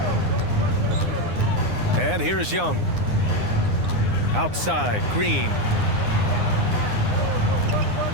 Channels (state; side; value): late; left; 9.7 ms